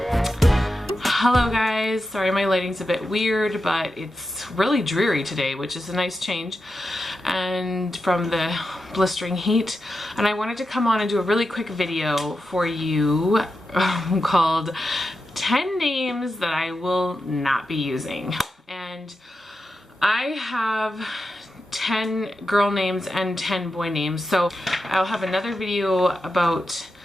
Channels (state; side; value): normal; both; correlation 0.89